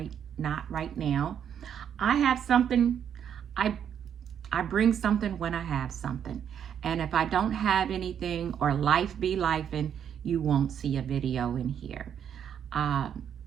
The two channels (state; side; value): quieter; left; 8.7 dB